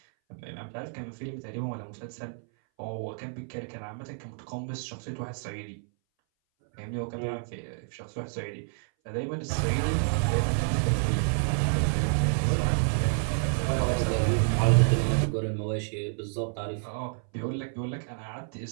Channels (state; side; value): silent; left; 58 dB below the other